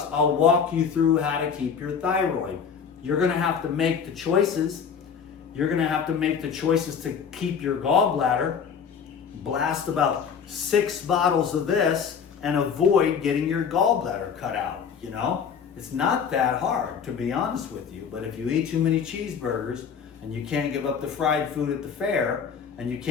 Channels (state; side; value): quieter; right; 6.8 dB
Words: I'll walk you through how to keep your thyroid. You're going to have to make the choices. You're going to have to make the choices to keep your gallbladder. Blast about 6 bottles of this and avoid getting your gallbladder cut out, It's not that hard, to be honest with you. But if you eat too many cheeseburgers and you can't give up the fried food at the fair and you